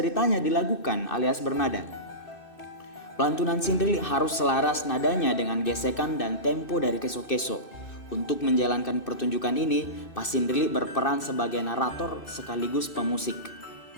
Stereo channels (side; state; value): right; late; 2.6 ms